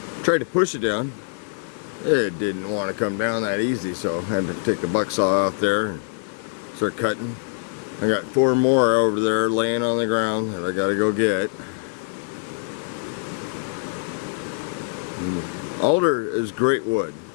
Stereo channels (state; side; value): silent; right; digital silence